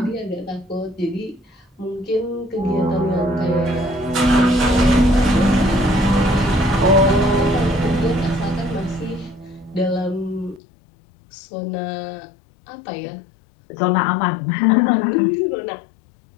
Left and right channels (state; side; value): drops out; right; at 10.6 s